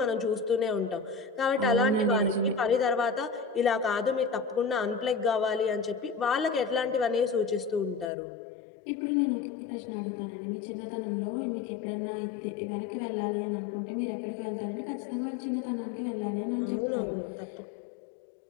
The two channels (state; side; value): drops out; right; at 8.1 s